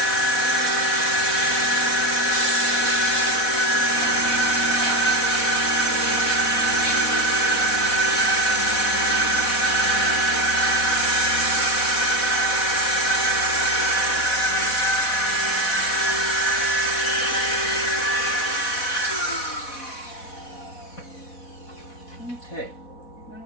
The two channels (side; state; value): right; late; 4.1 ms